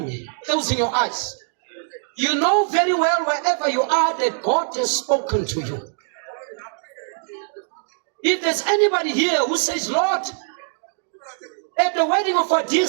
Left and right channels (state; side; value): silent; left; 63 dB below the other